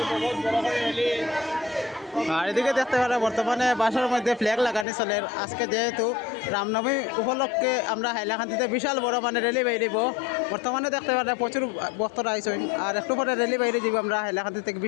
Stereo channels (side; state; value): right; drops out; at 4.9 s